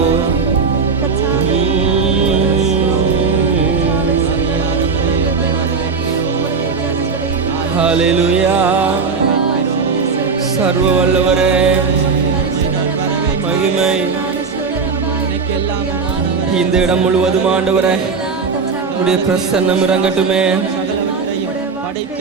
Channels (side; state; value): left; quieter; 5.0 dB